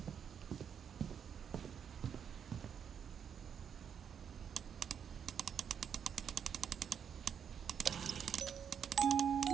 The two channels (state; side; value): quieter; left; 7.8 dB